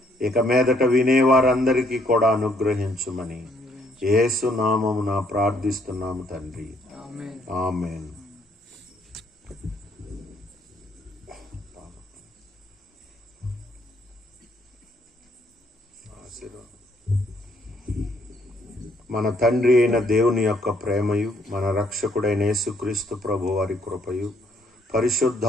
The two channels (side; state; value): both; normal; correlation 0.68